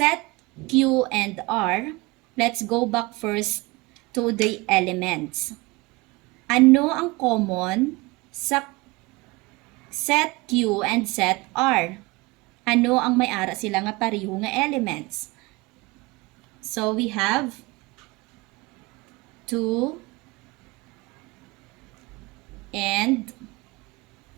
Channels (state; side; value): quieter; left; 23.6 dB